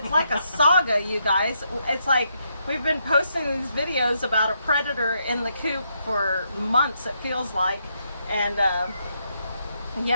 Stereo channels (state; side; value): inverted; both; correlation -0.78